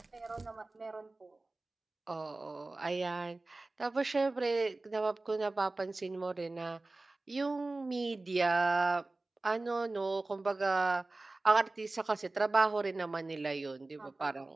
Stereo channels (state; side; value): quieter; left; 3.1 dB